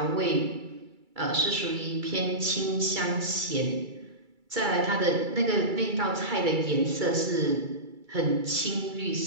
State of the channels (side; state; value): left; late; 2.3 ms